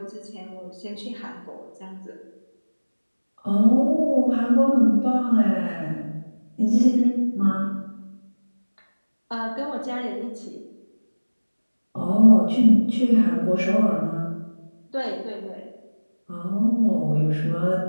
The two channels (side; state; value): both; inverted; correlation -1.00